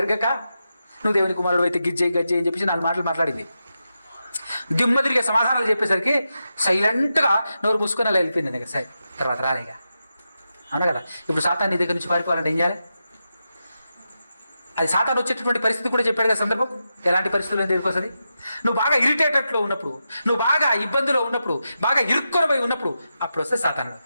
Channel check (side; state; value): both; inverted; correlation -0.88